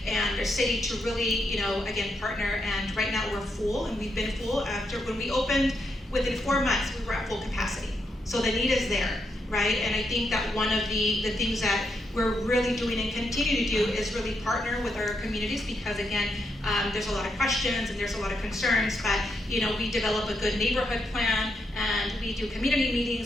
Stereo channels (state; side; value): normal; both; correlation 0.81